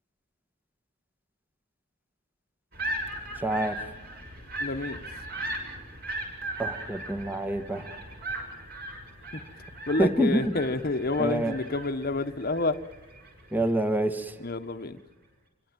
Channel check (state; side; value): normal; both; correlation 0.51